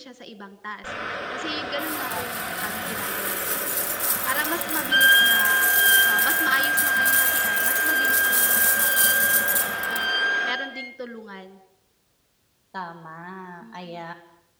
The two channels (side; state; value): both; identical; correlation 1.00